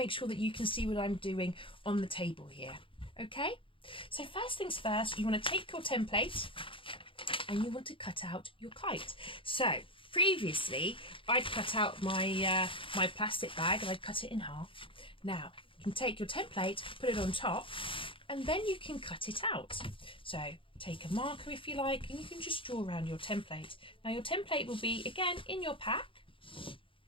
sure that you can see what I'm doing on the table here. Okay, so first things first, you want to take your template and you want to cut out your kite. So previously I'd cut out my my plastic bag and I'd cut it in half. Now you can take your template, put it on top, and then you can cut it out. So take a marker if you like, and you can just draw around your template. Now your template will be again in your pack.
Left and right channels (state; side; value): late; right; 0.25 ms